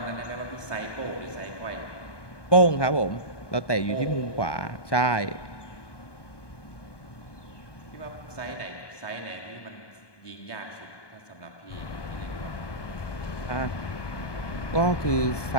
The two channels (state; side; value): late; right; 1.2 ms